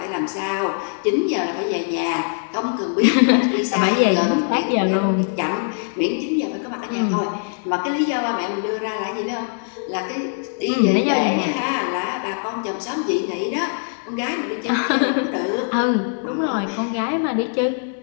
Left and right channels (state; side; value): silent; right; 64 dB below the other